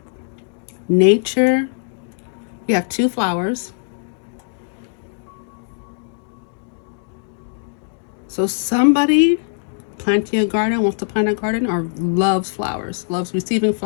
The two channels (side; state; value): right; silent; digital silence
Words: nature. We have 2 flowers. So somebody planting a garden, wants to plant a garden, or loves flowers, loves receiving